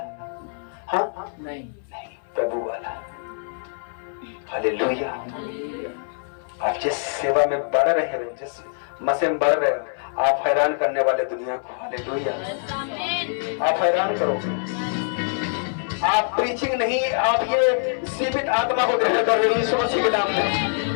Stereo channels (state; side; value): silent; right; 60 dB below the other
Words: हाँ नहीं, प्रभु वाला। हालेलुया। आप जिस सेवा में बढ़ रहे हो, जिस मसे में बढ़ रहे हो, आप हैरान करने वाले दुनिया को। हालेलुया। आप हैरान करोगे। आप प्रीचिंग नहीं, आप ये जीवित आत्मा को ग्रहण कर रहे हो यीशु मसीह के नाम में।